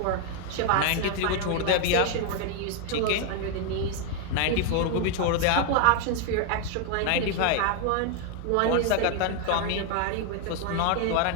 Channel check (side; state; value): both; different; correlation 0.00